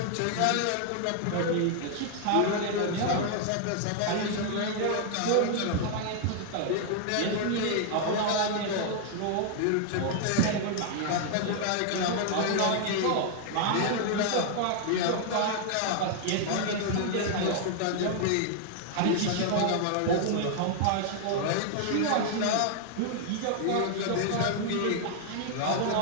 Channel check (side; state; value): both; different; correlation 0.00